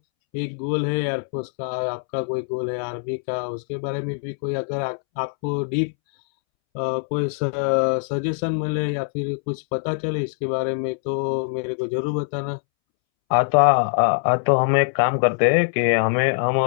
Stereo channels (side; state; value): right; silent; 64 dB below the other